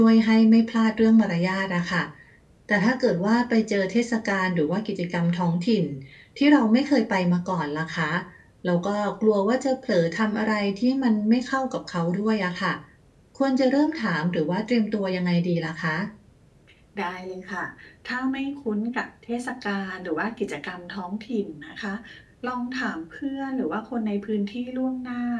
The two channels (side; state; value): both; identical; correlation 1.00